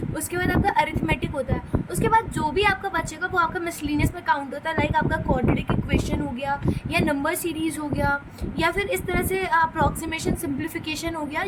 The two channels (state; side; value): identical; both; correlation 1.00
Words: उसके बाद आपका अरिथमेटिक होता है, उसके बाद जो भी आपका बचेगा वो आपका मिसलीनियस में काउंट होता है। लाइक आपका क्वाड्रेटिक इक्वेशन हो गया, या नंबर सीरीज हो गया, या फिर इस तरह से अप्रॉक्सीमेशन सिंप्लीफिकेशन हो गया,